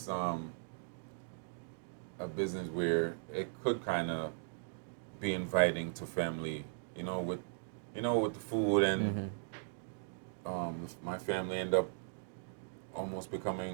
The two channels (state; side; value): silent; left; digital silence